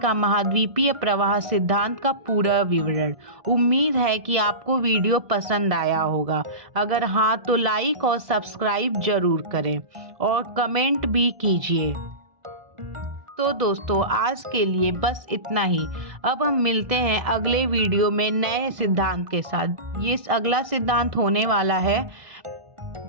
महाद्वीपीय प्रवाह सिद्धांत का पूरा विवरण। उम्मीद है कि आपको वीडियो पसंद आया होगा। अगर हाँ, तो लाइक और सब्सक्राइब जरूर करें और कमेंट भी कीजिए। तो दोस्तों आज के लिए बस इतना ही। अब हम मिलते हैं अगले वीडियो में नए सिद्धांत के साथ। ये अगला सिद्धांत होने वाला है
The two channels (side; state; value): left; late; 1.6 ms